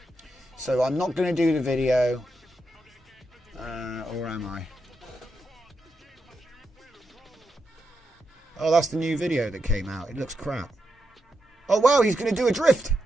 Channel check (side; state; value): both; normal; correlation 0.85